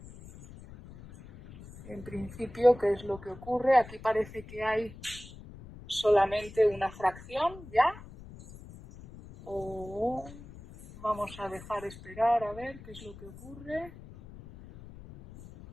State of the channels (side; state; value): left; noise; rumble, 17 dB below the sound